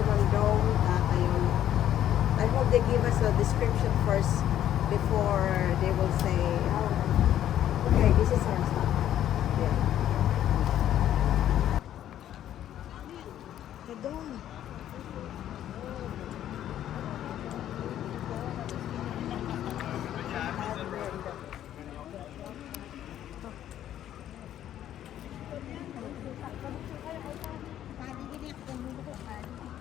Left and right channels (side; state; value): right; quieter; 11.4 dB